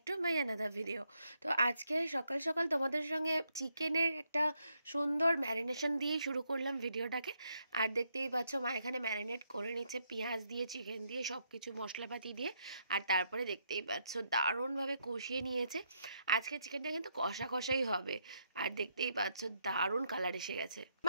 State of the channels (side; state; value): both; inverted; correlation -0.77